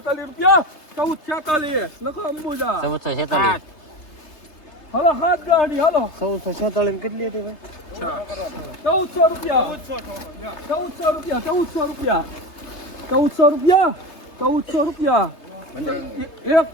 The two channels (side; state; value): right; late; 3.3 ms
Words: રૂપિયા 1446 લખો અંબુજા 1446 હાલો હાથ ગાડી હાલો 1446 કેટલી હતી ભાઈ 1400 રૂપિયા 1400 રૂપિયા 1400 રૂપિયા એક